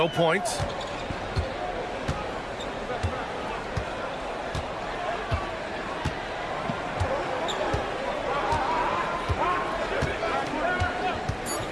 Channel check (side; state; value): both; identical; correlation 1.00